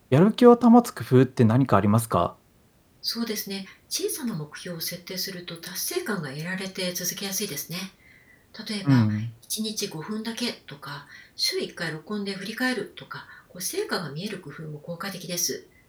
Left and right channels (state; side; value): identical; both; correlation 1.00